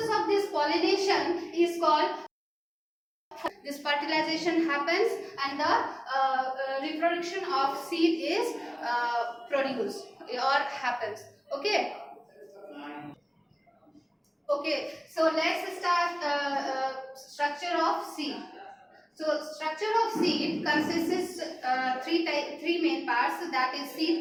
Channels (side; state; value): both; identical; correlation 1.00